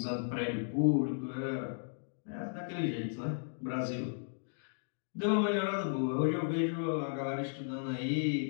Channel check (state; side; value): silent; right; digital silence